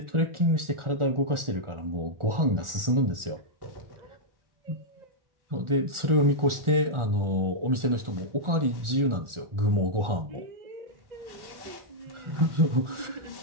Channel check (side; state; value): left; late; 1.4 ms